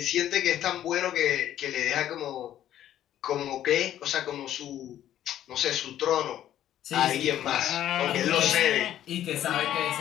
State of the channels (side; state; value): right; quieter; 11.8 dB